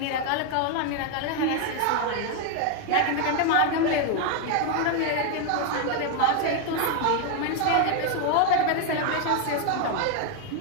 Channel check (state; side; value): different; both; correlation 0.01